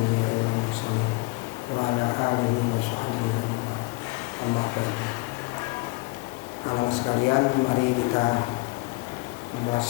wal mursalin wa ala alihi wa sahbihi ajma'in. Amma ba'du. Anak sekalian, mari kita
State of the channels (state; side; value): quieter; right; 24.4 dB